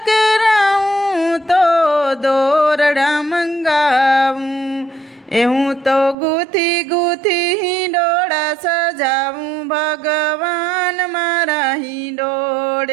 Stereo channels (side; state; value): left; drops out; at 6.2 s